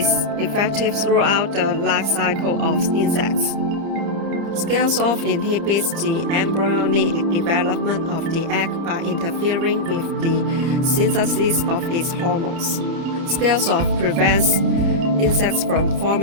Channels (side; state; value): left; late; 30 ms